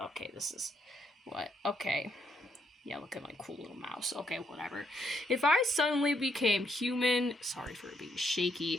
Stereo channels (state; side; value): normal; both; correlation 0.74